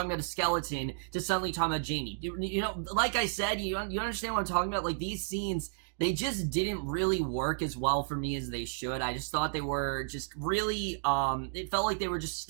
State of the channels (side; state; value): left; silent; digital silence